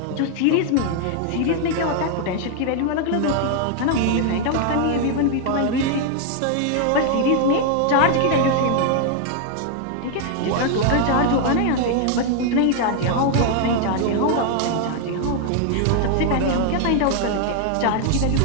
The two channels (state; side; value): different; both; correlation 0.00